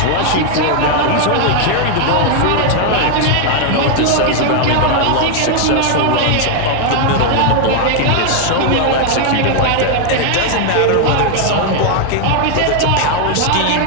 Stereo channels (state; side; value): different; both; correlation 0.00